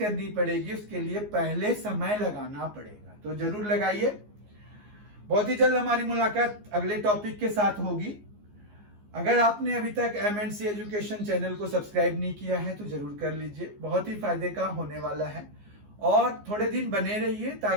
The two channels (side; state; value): left; late; 14 ms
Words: पड़ेगी, उसके लिए पहले समय लगाना पड़ेगा। तो जरूर लगाइए। बहुत ही जल्द हमारी मुलाकात अगले टॉपिक के साथ होगी। अगर आपने अभी तक MNC एजुकेशन चैनल को सब्सक्राइब नहीं किया है तो जरूर कर लीजिए, बहुत ही फायदे का होने वाला है। और थोड़े दिन बने रहिए